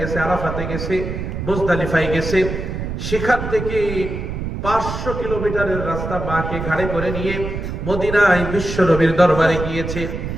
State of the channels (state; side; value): noise; right; rumble, 5 dB below the sound